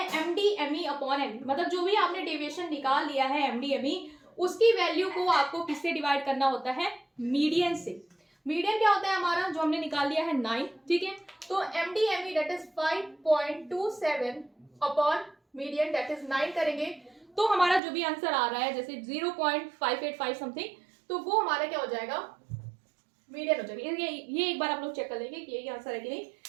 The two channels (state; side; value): drops out; left; at 17.8 s